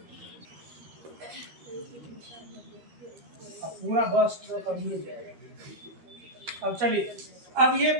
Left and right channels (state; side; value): late; left; 13 ms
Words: अब पूरा बस तो कर दिए जाएगा। अब चलिए, अब ये